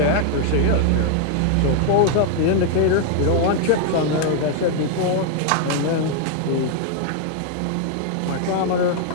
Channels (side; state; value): both; different; correlation 0.00